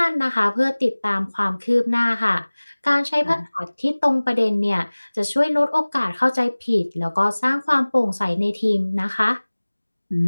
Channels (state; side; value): inverted; both; correlation -1.00